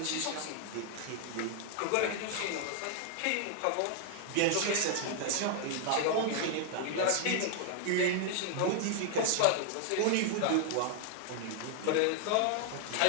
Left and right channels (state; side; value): different; both; correlation 0.00